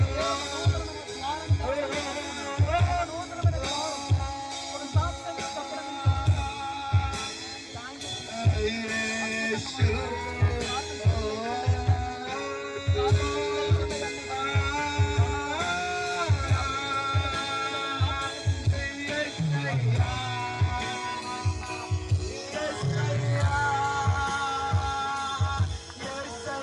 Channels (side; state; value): both; identical; correlation 1.00